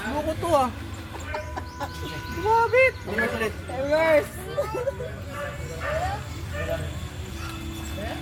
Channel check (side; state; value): both; identical; correlation 1.00